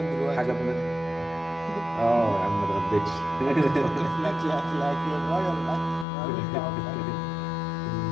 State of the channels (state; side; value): drops out; right; at 6.1 s